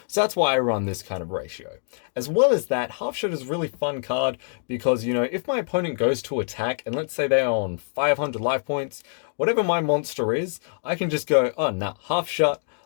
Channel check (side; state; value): right; silent; digital silence